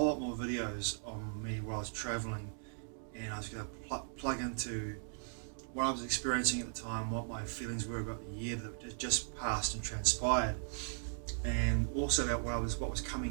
lot more videos on me while I was travelling, and I was going to plug into what I was experiencing at the time, what my feelings were about the year that had just passed and transpired, and also about what was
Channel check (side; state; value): left; silent; digital silence